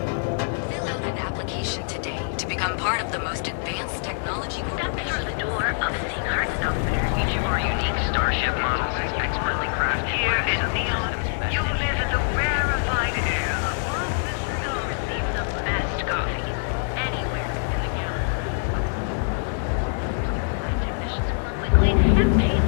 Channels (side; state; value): right; silent; digital silence